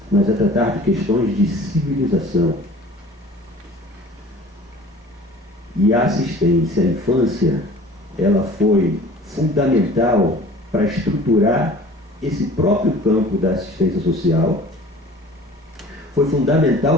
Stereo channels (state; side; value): normal; both; correlation 0.46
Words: mas é tratar de questões de civilização. E a assistência à infância, ela foi fundamental para estruturar esse próprio campo da assistência social, foi